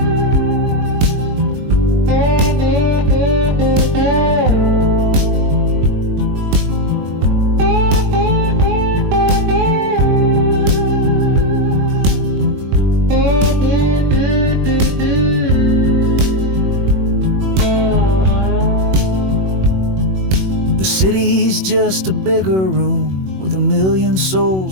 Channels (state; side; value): late; left; 21 ms